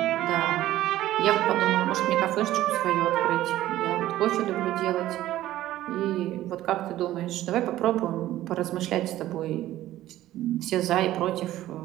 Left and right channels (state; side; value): quieter; left; 14.4 dB